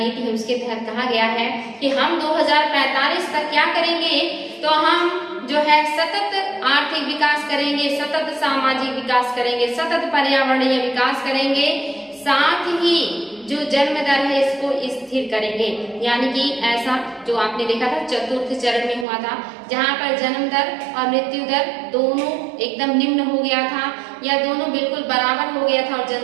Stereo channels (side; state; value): left; drops out; at 19.1 s